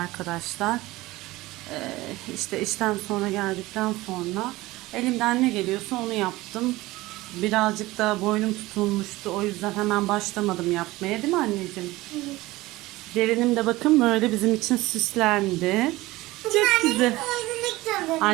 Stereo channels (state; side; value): quieter; left; 19.1 dB